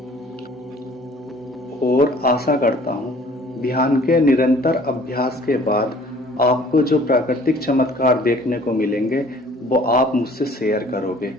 और आशा करता हूं ध्यान के निरंतर अभ्यास के बाद आपको जो प्राकृतिक चमत्कार देखने को मिलेंगे, वो आप मुझसे शेयर करोगे।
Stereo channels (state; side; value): normal; both; correlation 0.53